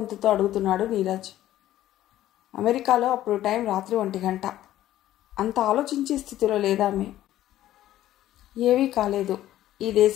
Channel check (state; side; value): quieter; right; 13.5 dB